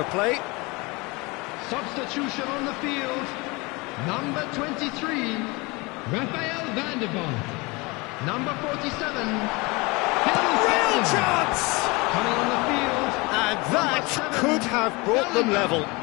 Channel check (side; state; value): right; quieter; 25.6 dB